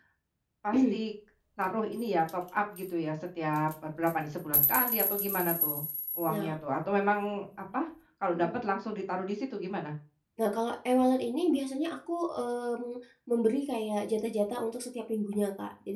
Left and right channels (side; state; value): both; identical; correlation 1.00